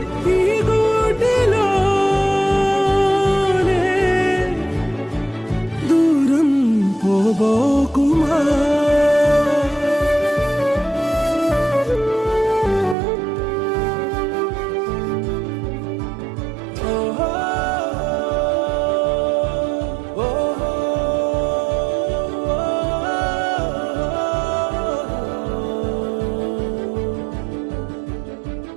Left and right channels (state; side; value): drops out; left; at 13.0 s